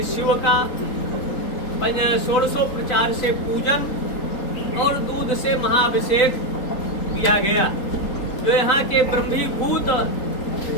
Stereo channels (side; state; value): right; late; 3.8 ms